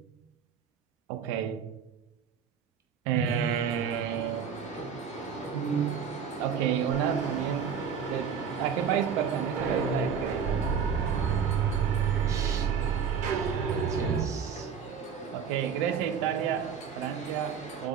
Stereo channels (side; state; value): left; quieter; 7.0 dB